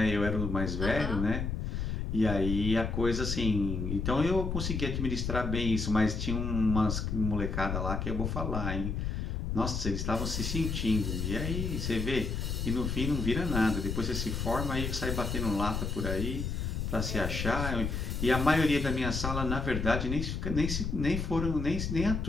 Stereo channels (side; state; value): left; noise; rumble, 2 dB below the sound